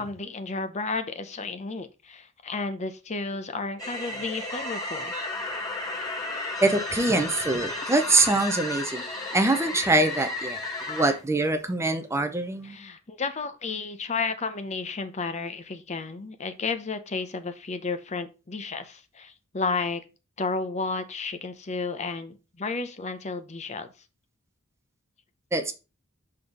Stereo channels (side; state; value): both; normal; correlation 0.33